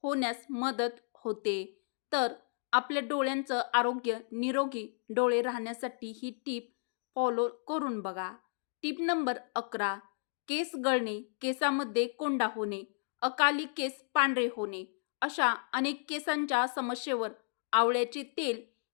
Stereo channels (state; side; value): silent; right; digital silence